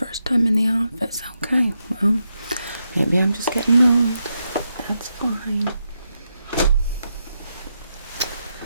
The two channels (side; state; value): both; inverted; correlation -0.84